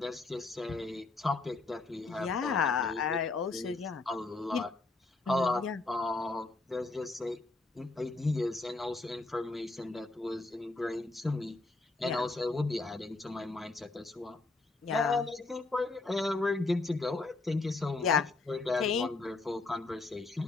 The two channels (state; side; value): quieter; right; 3.5 dB